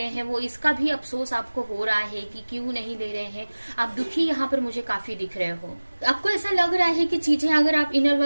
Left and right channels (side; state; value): both; inverted; correlation -1.00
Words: हैं वो, इसका भी अफसोस आपको हो रहा है कि क्यों नहीं ले रहे हैं। आप दुखी यहाँ पर मुझे काफी दिख रहे हो। आपको ऐसा लग रहा है कि चीजें अगर आप इनर